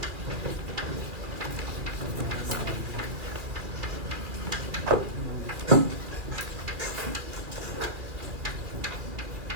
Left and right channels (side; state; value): left; late; 2.4 ms